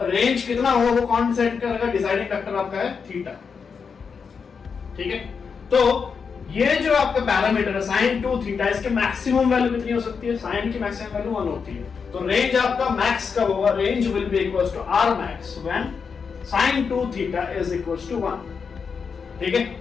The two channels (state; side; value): quieter; right; 5.8 dB